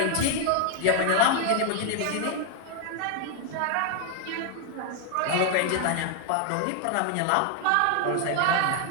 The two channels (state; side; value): different; both; correlation 0.00